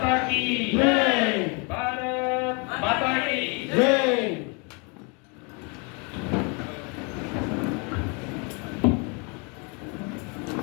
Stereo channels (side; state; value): right; quieter; 33.1 dB